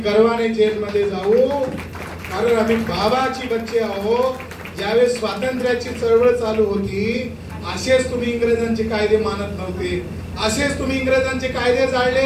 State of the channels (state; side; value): identical; both; correlation 1.00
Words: गर्वाने जेलमध्ये जाऊ. कारण आम्ही बाबाची बच्चे आहोत. ज्यावेळेस स्वातंत्र्याची चळवळ चालू होती असेच तुम्ही इंग्रजांचे कायदे मानत नव्हते, असेच तुम्ही इंग्रजांचे कायदे